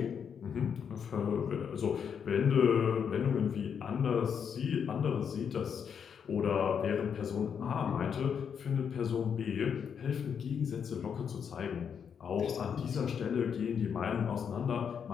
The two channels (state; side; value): quieter; right; 7.3 dB